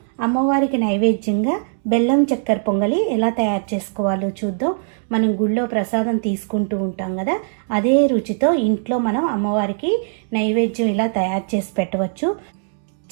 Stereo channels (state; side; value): silent; left; digital silence